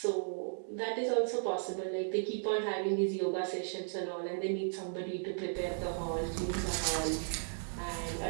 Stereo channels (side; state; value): left; silent; digital silence